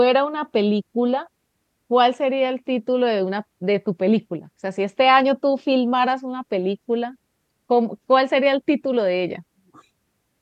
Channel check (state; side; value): identical; both; correlation 1.00